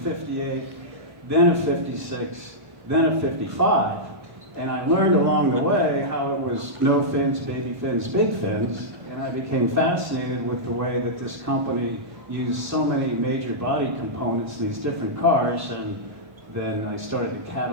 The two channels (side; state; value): left; late; 1.2 ms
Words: then a 56, then a 55. And I learned along the way how it was no fins, baby fins, big fins, and I became fascinated with the way that this company used so many major body components in these different cars, and then I started to